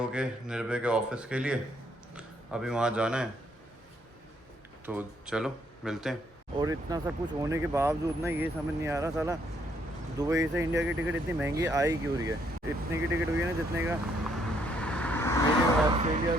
निर्भय के ऑफिस के लिए, अभी वहाँ जाना है तो चलो मिलते हैं। और इतना सब कुछ होने के बावजूद ना ये समझ नहीं आ रहा साला दुबई से इंडिया की टिकट इतनी महंगी आई क्यों रही है। इतने की टिकट हुई है ना जितने का मेरी ऑस्ट्रेलिया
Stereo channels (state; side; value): normal; both; correlation 0.71